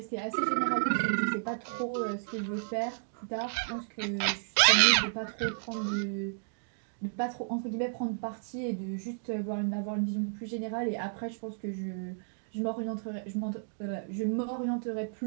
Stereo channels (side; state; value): left; silent; digital silence